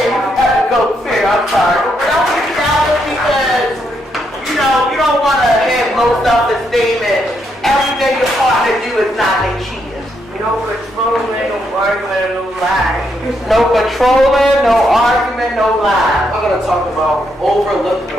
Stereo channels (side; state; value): both; normal; correlation 0.78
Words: and you have to go too, I'm sorry. But don't be jealous because, you don't want to have low self-esteem and everything your partner do is not they cheating. No controlling, no arguing, no lying. No controlling, no argument, no lie. I'm going to talk about overlooked